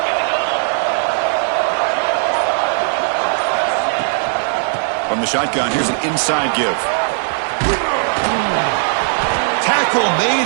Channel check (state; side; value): silent; left; 64 dB below the other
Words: From the shotgun, here's an inside give. Tackle